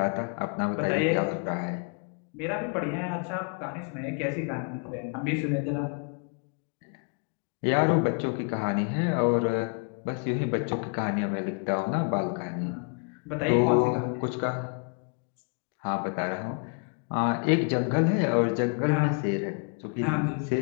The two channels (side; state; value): right; quieter; 38.3 dB